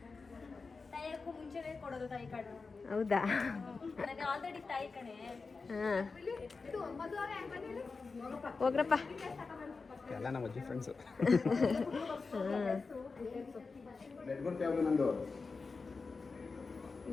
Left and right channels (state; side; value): quieter; right; 4.3 dB